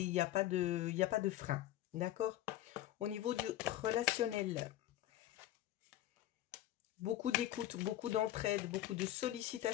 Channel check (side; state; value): right; quieter; 13.7 dB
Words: il n'y a pas de frein, d'accord? Au niveau du relationnel, beaucoup d'écoute, beaucoup d'entraide, beaucoup de